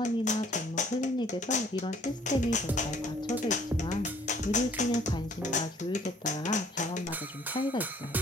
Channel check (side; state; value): both; normal; correlation 0.58